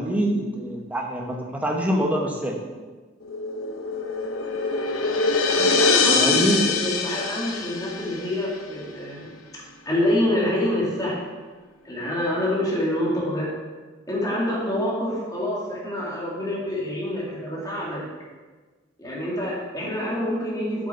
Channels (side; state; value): both; normal; correlation 0.36